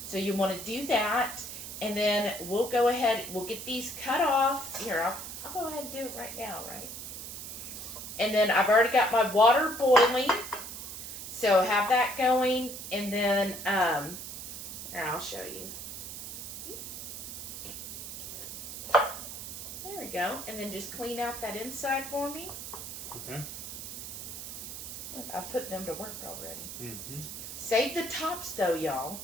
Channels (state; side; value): noise; right; hiss, 9 dB below the sound